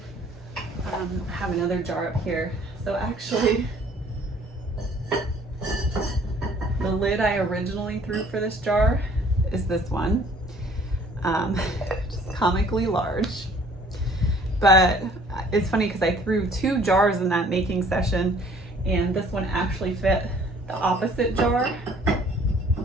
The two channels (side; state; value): both; normal; correlation 0.56